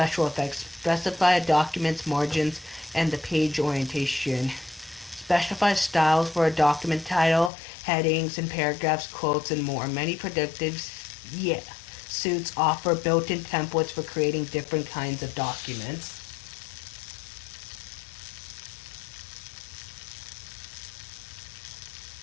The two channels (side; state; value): right; drops out; at 7.5 s